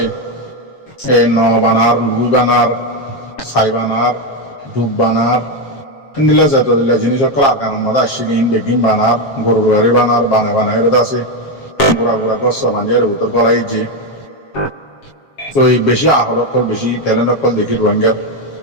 এ ন বানার লুই বানার ছাই বানার ডুব বানার দিলা যত দিলা জিনিস সকল আর কারণ মাদা আসছিলেন বেগিন বানার গরুর গাড়ি বানার বানায় বানায় আছে গোড়া গোড়া গছ মাঞ্জের উত্তর গলাই যে তো এই বেশি আহল অকল বেশি ট্যালেন্ট অকল দেখি রোহিঙ্গার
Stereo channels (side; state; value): right; late; 7.4 ms